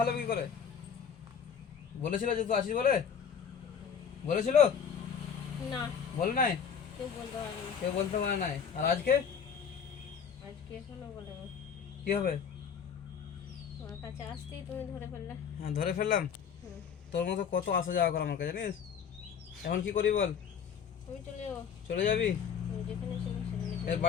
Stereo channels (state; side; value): quieter; right; 7.3 dB